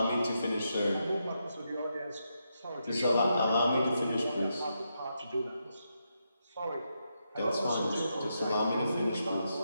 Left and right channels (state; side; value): inverted; both; correlation -0.83